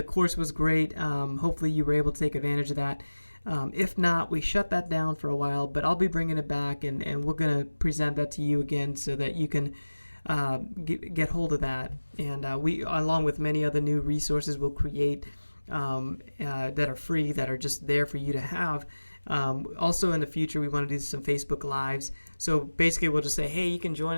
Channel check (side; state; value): both; inverted; correlation -1.00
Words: course was great. Hopefully you were able to take advantage of that. If not, we shut that down for a while, but I'll be bringing it back, and we're going to present that to you again so that you can get hold of that. And we, along with many other new resources, will create that are free, that are just there for you to have. Also in the future, we want to do some Facebook Lives. So basically, we'll just say, hey, you can join